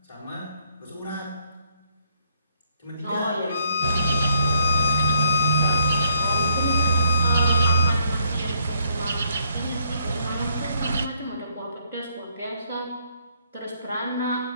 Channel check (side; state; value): both; inverted; correlation -0.69